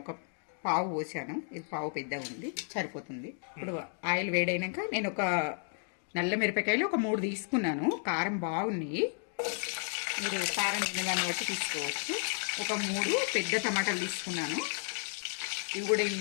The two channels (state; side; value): silent; right; 56 dB below the other